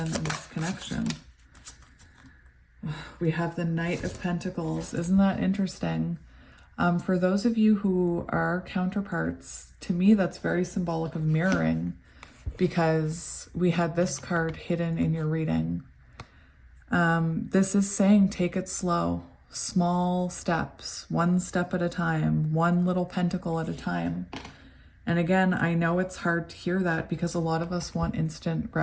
and this connection? We have the Knight of Pentacles. Isn't that interesting? For those of you who are counterparts, to me, that's very symbolic of mirroring, because we had this card hidden in your reading. This is saying take it slow. Small steps, one step at a time, one little pentacle at a time. And again, I know it's hard to hear that because a lot of us want instant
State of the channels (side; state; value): both; identical; correlation 1.00